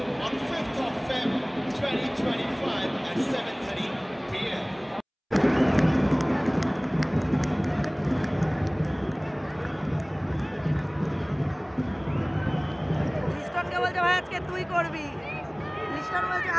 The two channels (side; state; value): both; identical; correlation 1.00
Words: on 5th of February 2025 at 7:30 p.m. লিস্টনকে বলছে ভাই আজকে তুই করবি, লিস্টন বলছে